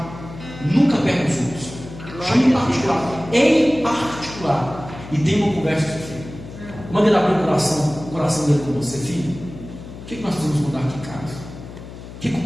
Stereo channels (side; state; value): left; noise; hum, 14 dB below the sound